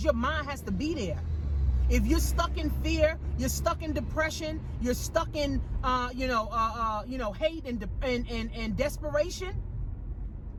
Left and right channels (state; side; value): identical; both; correlation 1.00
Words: your mind has to be there. If you're stuck in fear, you're stuck in depression, you're stuck in hate and desperation,